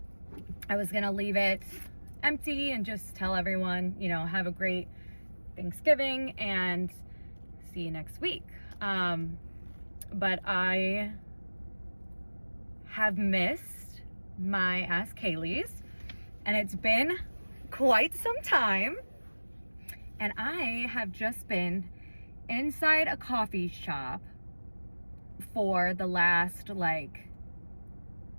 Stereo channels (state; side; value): inverted; both; correlation -1.00